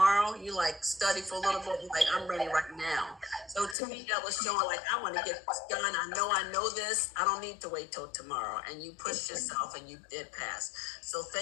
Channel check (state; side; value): drops out; right; at 3.8 s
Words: You like study for a little bit, like I'm ready right now. So to me, that was showing like, I want to get this done. I know this. I don't need to wait till tomorrow. And you pushed yourself and you did pass. So